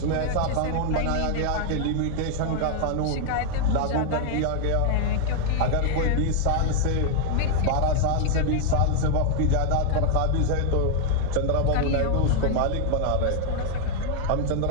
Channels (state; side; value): different; both; correlation 0.00